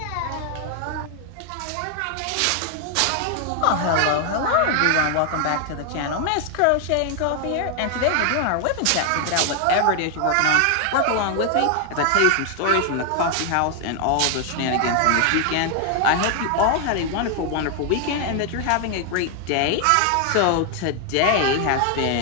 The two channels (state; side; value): different; both; correlation 0.00